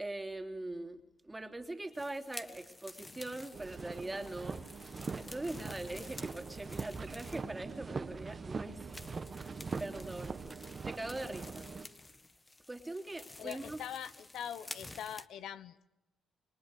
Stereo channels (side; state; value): both; normal; correlation 0.90